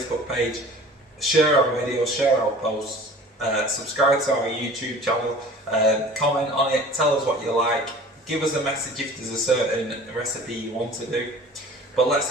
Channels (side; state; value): both; normal; correlation 0.44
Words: page, share our videos, share our posts, subscribe to our YouTube channel, comment on it, tell us what you like, give us a message if there's a certain recipe you want to do. But let's